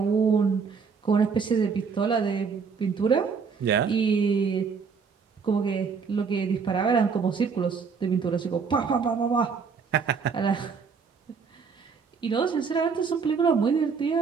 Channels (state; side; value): quieter; left; 5.6 dB